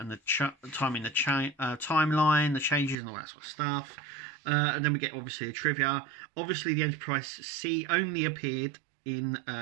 the time in the timeline, the changes and all that sort of stuff. And then we get obviously a trivia. Obviously the Enterprise C only appeared in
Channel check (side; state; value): left; drops out; at 3.0 s